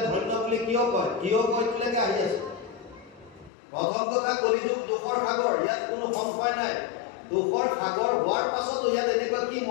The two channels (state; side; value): drops out; right; at 3.5 s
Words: ধন্য বুলি কিয় কয়লৈকে আহি আছে প্ৰথম কথা কলিযুগ দুখৰ সাগৰ ইয়াত কোনো সংশয় নাই দুখৰ সাগৰ হোৱাৰ পাছতো ইয়াত এনেকুৱা কি